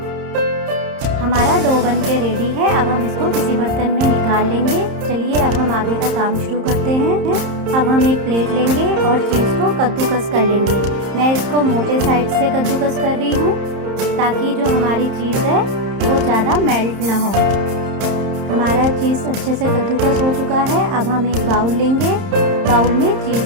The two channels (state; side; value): late; left; 30 ms